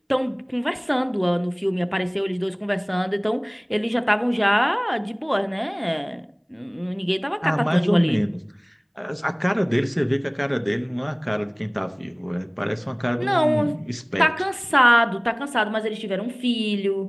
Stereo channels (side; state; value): both; identical; correlation 1.00